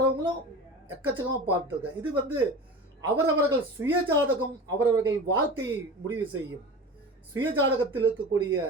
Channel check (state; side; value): normal; both; correlation 0.33